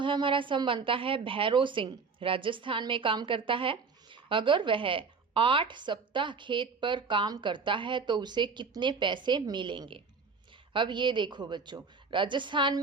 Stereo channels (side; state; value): left; quieter; 5.0 dB